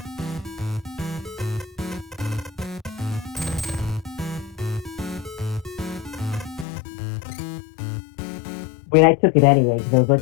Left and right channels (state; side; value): drops out; right; at 6.7 s